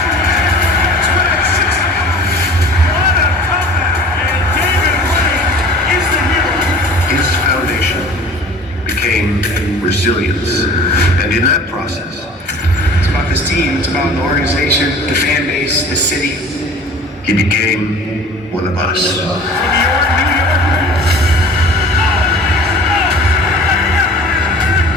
His foundation became resilience. And in that process, It's about this team, it's about the organization, the fan base, the city. he became one of us.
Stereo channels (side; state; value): both; normal; correlation 0.44